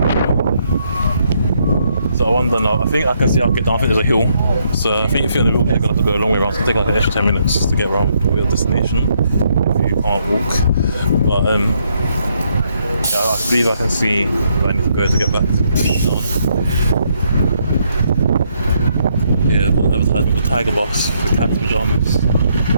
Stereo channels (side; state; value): both; inverted; correlation -0.73